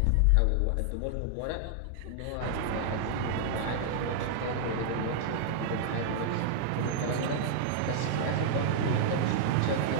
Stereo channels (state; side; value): different; both; correlation -0.01